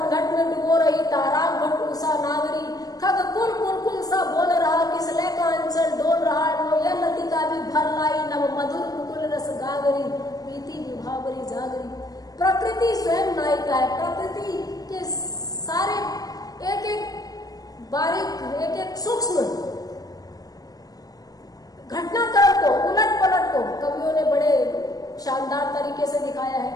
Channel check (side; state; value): right; late; 0.18 ms